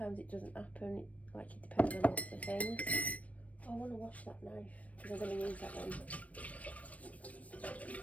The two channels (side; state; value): right; late; 0.067 ms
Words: it doesn't happen. Like, it depends on lots of things. Oh, I want to wash that knife because I'm going to use that one.